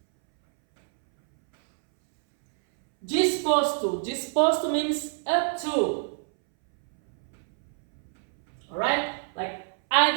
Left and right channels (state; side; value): silent; left; 61 dB below the other